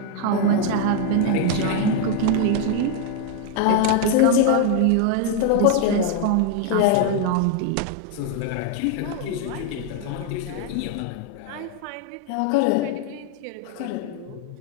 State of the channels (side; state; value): both; different; correlation 0.00